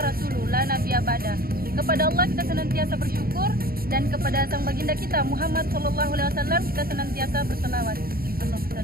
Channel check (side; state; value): left; late; 0.43 ms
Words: la nabiyya ba'da. Kepada Allah kita senantiasa bersyukur dan kepada sang baginda kita Muhammad sallallahu alaihi wasallam kita senantiasa berselawat. Allahumma